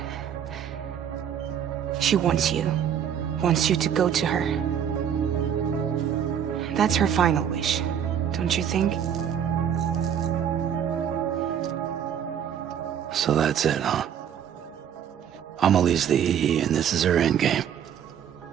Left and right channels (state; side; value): quieter; left; 8.9 dB